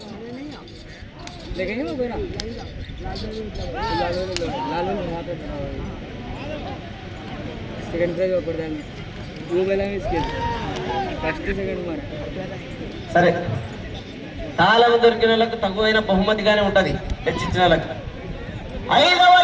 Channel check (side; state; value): both; identical; correlation 1.00